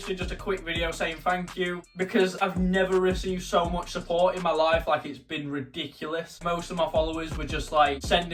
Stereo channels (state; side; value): identical; both; correlation 1.00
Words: just a quick video saying thank you because I've never received so much support in my life. Like, it's been ridiculous. Most of my followers were just like